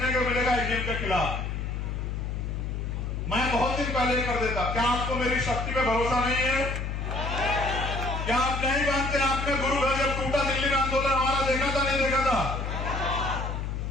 को मिलेगा ईवीएम के खिलाफ। मैं बहुत दिन पहले कर देता। क्या आपको मेरी शक्ति पे भरोसा नहीं है? क्या आप नहीं मानते? आपने गुरु घर जब टूटा दिल्ली में आंदोलन हमारा देखा था, नहीं देखा था?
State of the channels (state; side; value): noise; left; hum, 3 dB below the sound